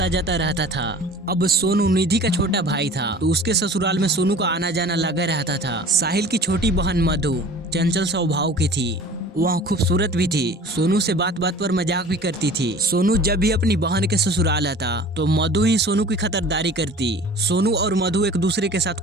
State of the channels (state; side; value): normal; both; correlation 0.44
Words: जाता रहता था। अब सोनू निधि का छोटा भाई था, तो उसके ससुराल में सोनू का आना जाना लगा रहता था। साहिल की छोटी बहन मधु चंचल स्वभाव की थी, वह खूबसूरत भी थी। सोनू से बात बात पर मजाक भी करती थी। सोनू जब भी अपनी बहन के ससुराल आता तो मधु ही सोनू की खतरदारी करती। सोनू और मधु एक दूसरे के साथ